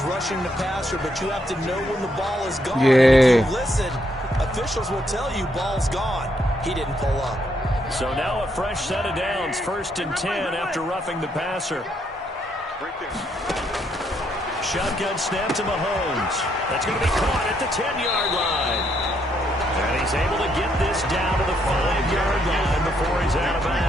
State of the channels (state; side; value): normal; both; correlation 0.74